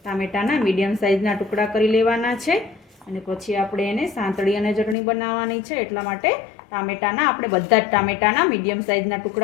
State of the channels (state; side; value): drops out; right; at 5.0 s